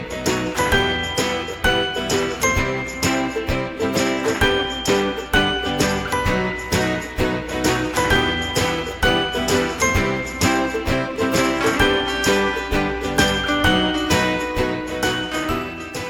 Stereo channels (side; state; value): both; identical; correlation 1.00